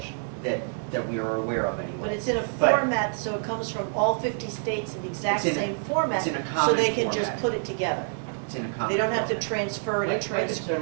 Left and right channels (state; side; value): silent; left; digital silence